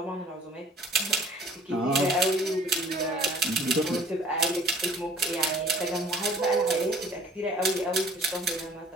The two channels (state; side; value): normal; both; correlation 0.52